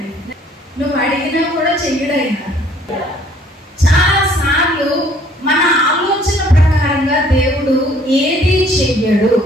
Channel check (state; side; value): normal; both; correlation 0.59